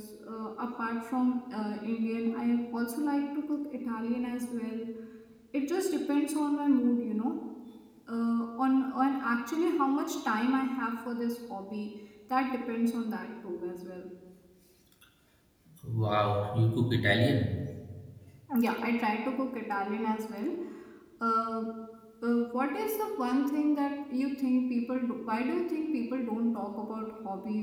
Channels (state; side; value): identical; both; correlation 1.00